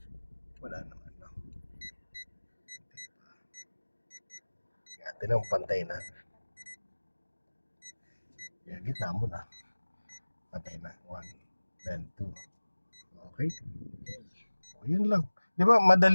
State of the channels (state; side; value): inverted; both; correlation -1.00